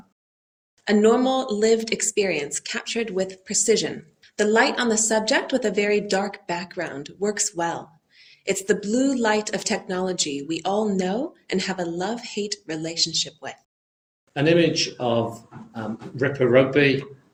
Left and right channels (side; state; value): both; identical; correlation 1.00